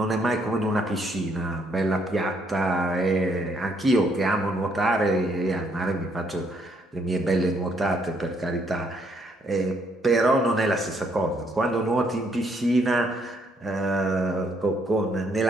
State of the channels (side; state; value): both; normal; correlation 0.70